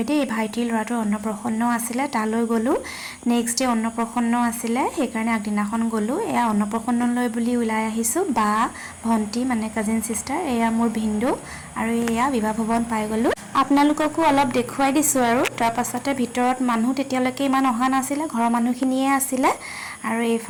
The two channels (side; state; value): both; identical; correlation 1.00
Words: दे भाइटिर लराटो अन्नप्रसन्न आसिले ताলৈ गलु नेक्स्ट डे अन्नप्रसन्न आसिले हेकारणे আগদিনাখন गलु एया अन्नप्रसन्नলৈ बुली उলাই आहिसु बा भंटी माने काजिन सिस्टर एया मोर भिन्दु आरो एया विवाह भवन पाइ गलु आपनालोककো অলপ দেখুৱাই দিছো আৰু তাৰ পাছতে ভিতৰত মানুহ তেতিয়ালৈকে ইমান অহা নাছিলে ঘৰৰ মানুহখিনিয়ে আছিলে আৰু